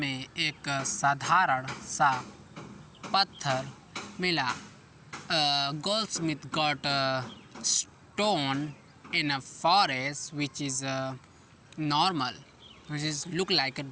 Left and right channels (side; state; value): both; identical; correlation 1.00